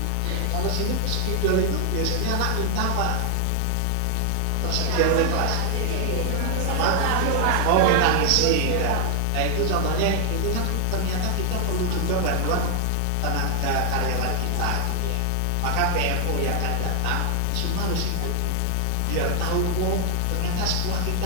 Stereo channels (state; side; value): different; both; correlation 0.00